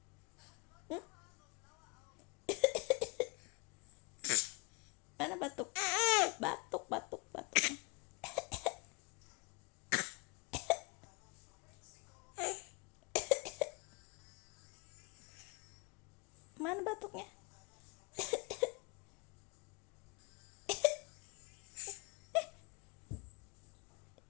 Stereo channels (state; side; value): quieter; right; 30.8 dB